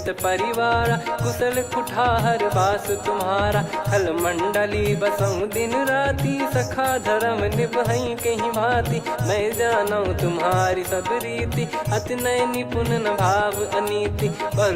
परिवारा, कुशल कुठार बास तुम्हारा। खल मंडली बसऊं दिन राती, सखा धर्म निभई कहीं भांति। मैं जानू तुम्हारी सब रीति, अति नय निपुण न भाव अनीति।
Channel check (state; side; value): identical; both; correlation 1.00